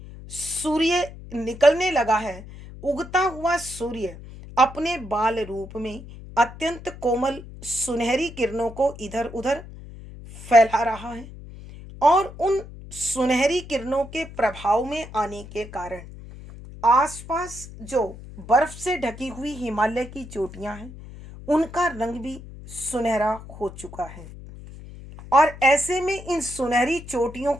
सूर्य निकलने लगा है। उगता हुआ सूर्य अपने बाल रूप में अत्यंत कोमल सुनहरी किरणों को इधर उधर फैला रहा है, और उन सुनहरी किरणों के प्रभाव में आने के कारण आसपास जो बर्फ से ढकी हुई हिमालय की चोटियां हैं उनका रंग भी सुनहरा हो चुका है। और ऐसे में इन सुनहरी चोटियों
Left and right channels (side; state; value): left; noise; hum, 15 dB below the sound